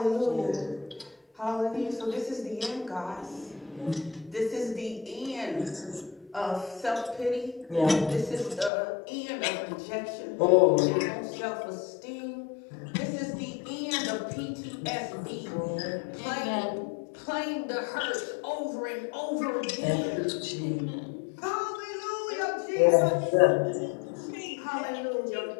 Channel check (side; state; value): right; drops out; at 8.7 s